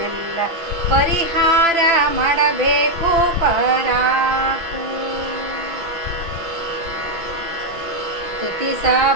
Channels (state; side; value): late; left; 5.9 ms